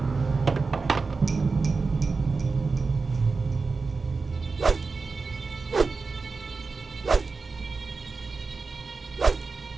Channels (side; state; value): left; quieter; 4.3 dB